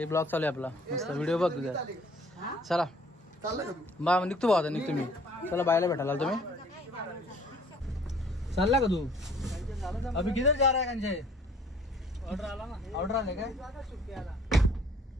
ब्लॉग चालू आहे आपला मस्त. व्हिडिओ बघ तुझा. चला बा निघतो भाऊ. आता निघतो मी. चला बायला भेटायला तुम्ही. चालला का तू? अभी किधर जा रहा है कंचे? ऑर्डर आला ना. ऑर्डर आले काय?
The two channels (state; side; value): normal; both; correlation 0.56